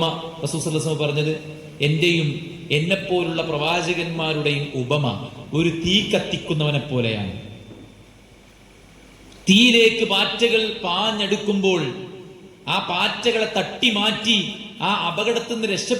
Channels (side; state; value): both; identical; correlation 1.00